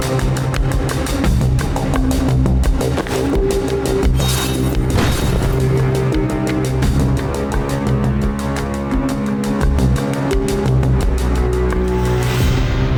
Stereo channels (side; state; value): both; identical; correlation 1.00